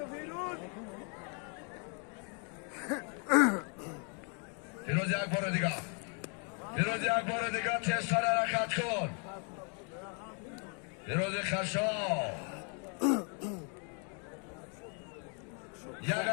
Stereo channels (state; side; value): quieter; right; 39.0 dB